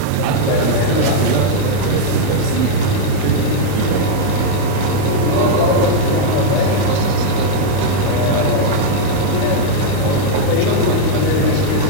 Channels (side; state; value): both; different; correlation -0.01